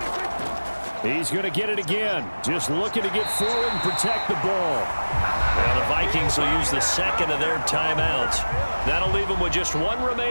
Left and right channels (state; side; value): inverted; both; correlation -1.00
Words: He's going to get it again. Just looking to get forward and protect the ball. Well, the Vikings will use the 2nd of their timeouts. That'll leave them with just 1